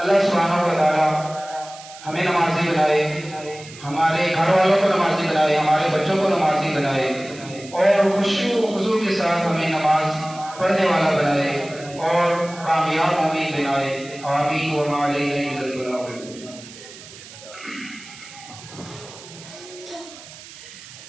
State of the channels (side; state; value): right; noise; hiss, 17 dB below the sound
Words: سبحانہ و تعالیٰ ہمیں نمازی بنائے، ہمارے گھر والوں کو نمازی بنائے، ہمارے بچوں کو نمازی بنائے، اور خشوع و خضوع کے ساتھ ہمیں نماز پڑھنے والا بنائے اور کامیاب مومن بنائے۔ آمین وما علینا الا البلاغ المبین۔